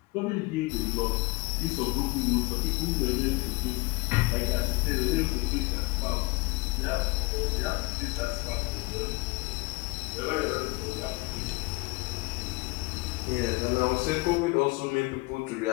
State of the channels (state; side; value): quieter; right; 24.7 dB